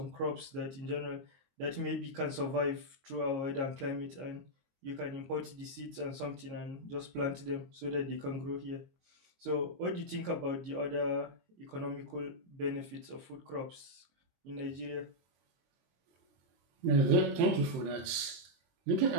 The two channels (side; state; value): left; late; 23 ms